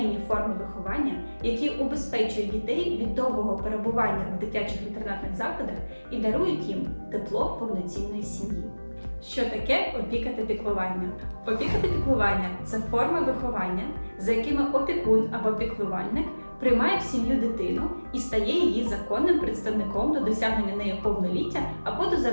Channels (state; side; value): inverted; both; correlation -1.00